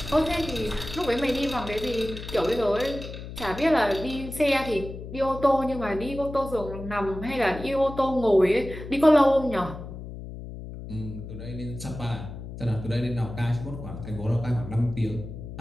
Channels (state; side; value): noise; left; hum, 10 dB below the sound